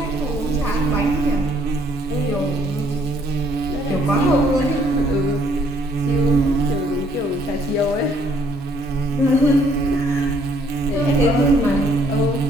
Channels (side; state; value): both; normal; correlation 0.65